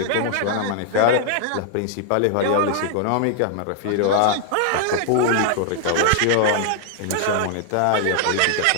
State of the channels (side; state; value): both; different; correlation -0.01